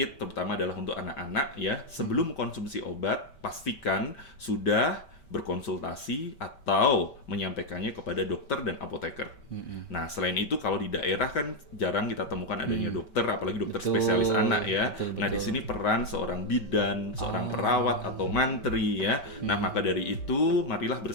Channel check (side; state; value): right; late; 5.2 ms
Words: terutama adalah untuk anak-anak ya, sebelum konsumsi obat pastikan sudah berkonsultasi atau menyampaikannya kepada dokter dan apoteker. Nah, selain itu kalau di daerah kan jarang kita temukan adanya dokter, apalagi dokter spesialis anak ya. Betul. Nah, di sini peran seorang bidan, seorang perawat atau mantri ya. Nah, maka dari itu marilah